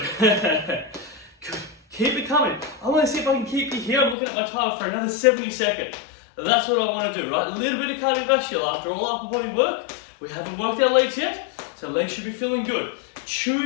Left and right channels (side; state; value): right; drops out; at 4.2 s